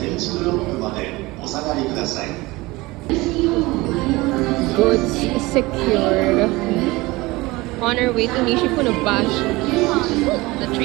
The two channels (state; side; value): quieter; left; 21.4 dB